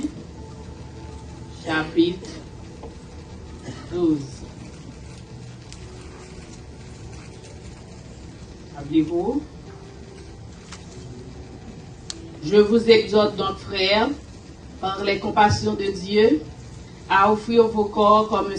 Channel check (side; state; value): both; identical; correlation 1.00